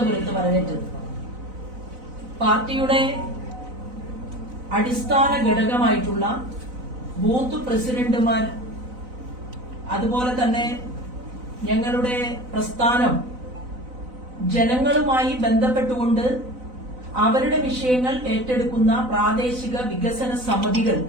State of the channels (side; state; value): left; late; 4.0 ms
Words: വരവേറ്റത്. പാർട്ടിയുടെ അടിസ്ഥാന ഘടകമായിട്ടുള്ള ബൂത്ത് പ്രസിഡന്റുമാർ, അതുപോലെ തന്നെ ഞങ്ങളുടെ പ്രസ്ഥാനം ജനങ്ങളുമായി ബന്ധപ്പെട്ടുകൊണ്ട് അവരുടെ വിഷയങ്ങൾ ഏറ്റെടുക്കുന്ന പ്രാദേശിക വികസന സമിതികൾ,